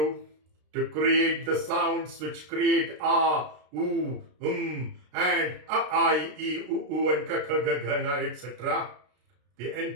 to create the sounds which create A, U, and A, I, E, U, and K, K, G, G, N, etc. The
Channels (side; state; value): left; late; 33 ms